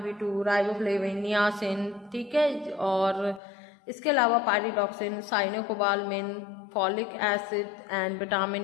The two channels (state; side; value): drops out; right; at 3.4 s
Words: B2, riboflavin, niacin, ठीक है, और इसके अलावा pyridoxine, cyanocobalamin, folic acid and